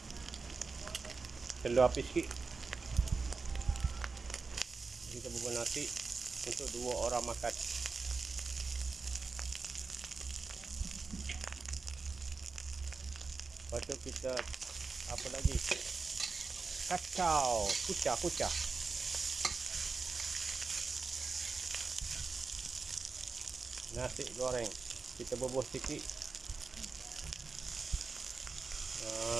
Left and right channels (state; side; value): quieter; left; 4.4 dB